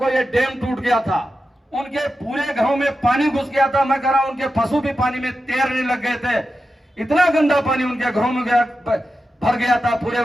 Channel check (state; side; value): normal; both; correlation 0.90